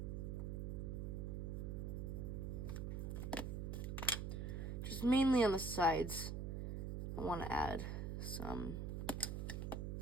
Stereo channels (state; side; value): noise; right; hum, 2 dB below the sound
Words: Just mainly on the sides, I want to add some